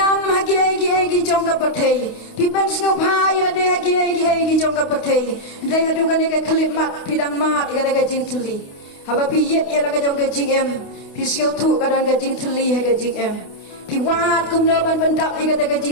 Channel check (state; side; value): late; right; 28 ms